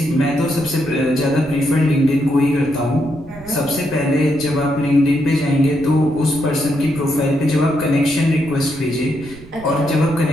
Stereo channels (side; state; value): right; noise; rumble, 19 dB below the sound